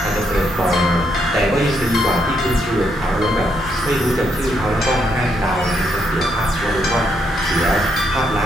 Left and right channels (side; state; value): both; normal; correlation 0.76